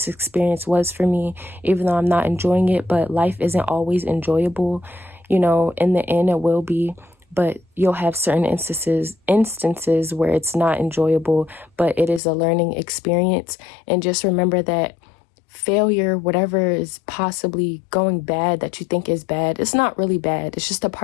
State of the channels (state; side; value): drops out; right; at 12.2 s